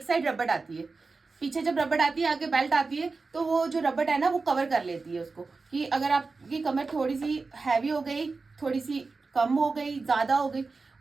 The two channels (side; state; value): left; quieter; 4.1 dB